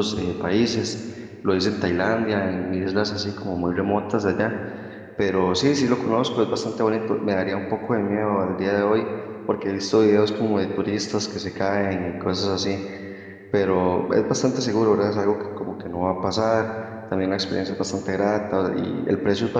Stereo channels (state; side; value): identical; both; correlation 1.00